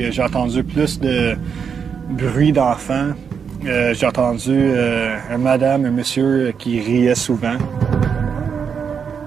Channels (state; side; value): quieter; left; 6.7 dB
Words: J'ai entendu plus de bruit d'enfants. J'ai entendu un madame, un monsieur qui riait souvent.